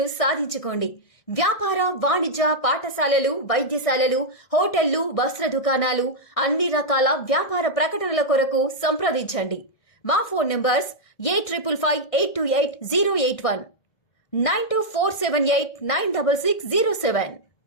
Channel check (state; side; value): late; right; 1.7 ms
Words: సాధించుకోండి. వ్యాపార, వాణిజ్య, పాఠశాలలు, వైద్యశాలలు, హోటళ్లు, వస్త్ర దుకాణాలు, అన్ని రకాల వ్యాపార ప్రకటనల కొరకు సంప్రదించండి. మా phone numbers 8558288081, 9247896607.